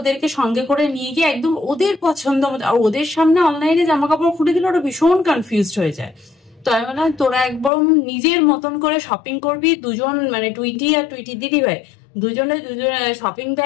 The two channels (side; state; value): right; drops out; at 7.7 s